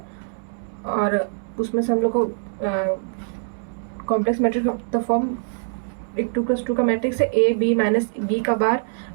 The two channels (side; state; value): left; silent; 63 dB below the other